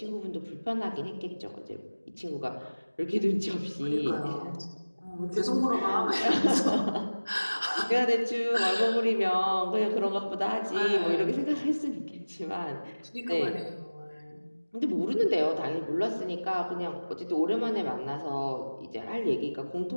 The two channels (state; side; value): inverted; both; correlation -1.00